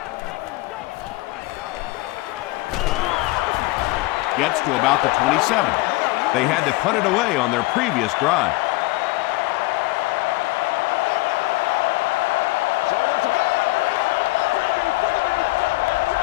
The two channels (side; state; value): right; quieter; 21.3 dB